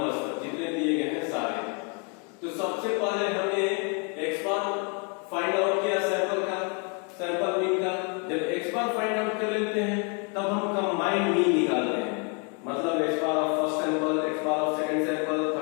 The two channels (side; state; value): right; quieter; 35.5 dB